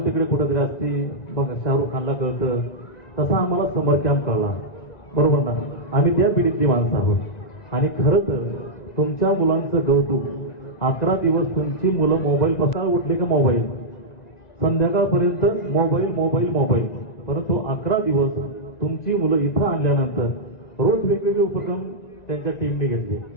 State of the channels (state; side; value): late; right; 1.9 ms